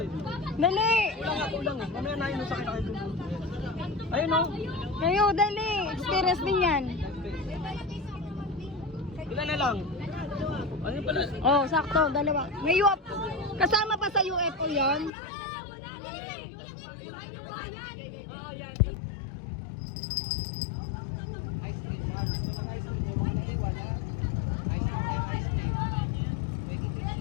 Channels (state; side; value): drops out; right; at 15.1 s